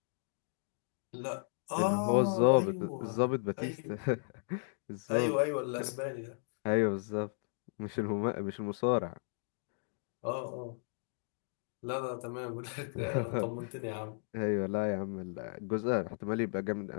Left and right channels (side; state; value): right; silent; digital silence